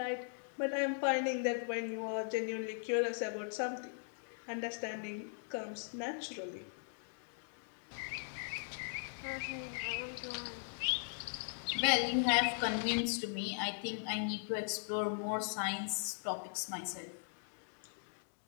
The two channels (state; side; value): silent; right; digital silence